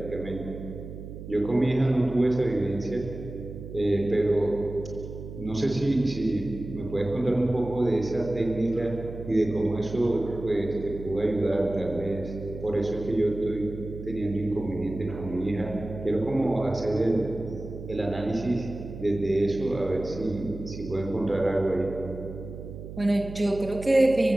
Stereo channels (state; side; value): noise; right; hum, 11 dB below the sound